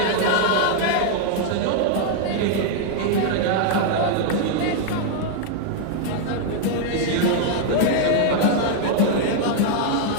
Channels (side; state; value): both; different; correlation -0.01